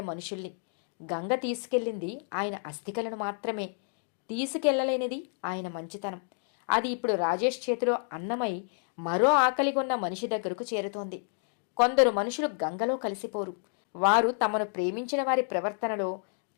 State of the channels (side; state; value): right; silent; 58 dB below the other